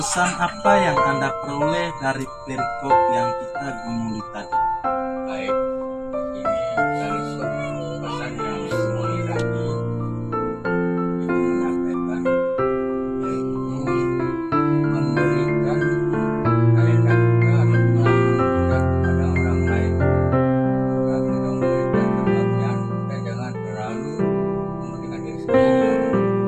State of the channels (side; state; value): both; identical; correlation 1.00